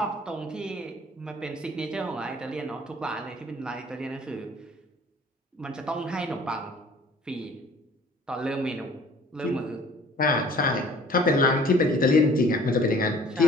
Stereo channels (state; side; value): normal; both; correlation 0.52